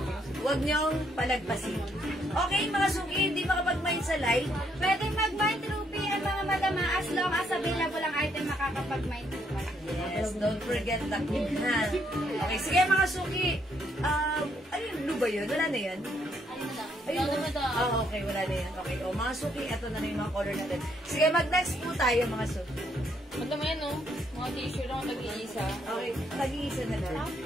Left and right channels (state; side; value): normal; both; correlation 0.72